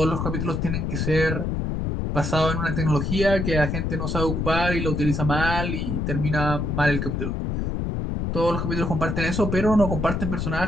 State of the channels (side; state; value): left; noise; rumble, 1 dB below the sound